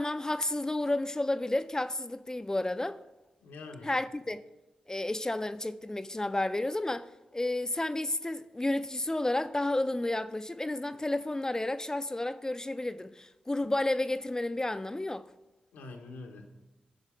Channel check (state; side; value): normal; both; correlation 0.90